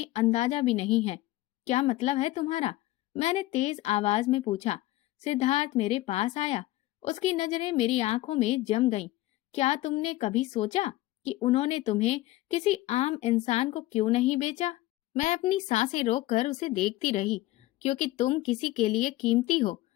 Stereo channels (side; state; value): right; quieter; 17.2 dB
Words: अंदाजा भी नहीं है। क्या मतलब है तुम्हारा? मैंने तेज आवाज में पूछा। सिद्धार्थ मेरे पास आया, उसकी नजरें मेरी आंखों में जम गईं। क्या तुमने कभी सोचा कि उन्होंने तुम्हें किसी आम इंसान को क्यों नहीं बेचा? मैं अपनी सांसें रोककर उसे देखती रही, क्योंकि तुम किसी के लिए कीमती हो,